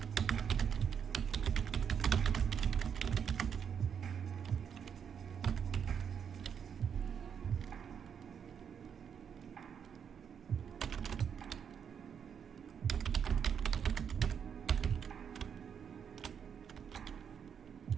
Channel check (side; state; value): left; quieter; 7.5 dB